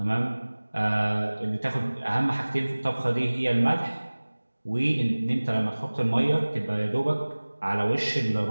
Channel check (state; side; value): inverted; both; correlation -1.00